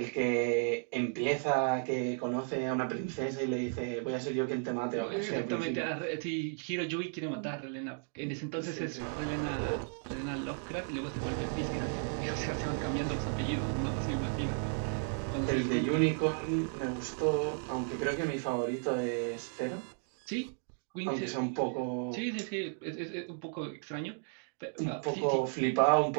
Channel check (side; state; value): left; silent; 55 dB below the other